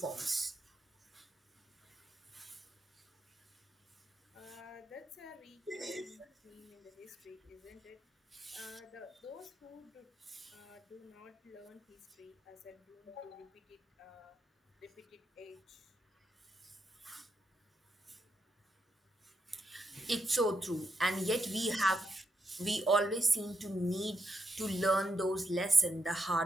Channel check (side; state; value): both; normal; correlation 0.82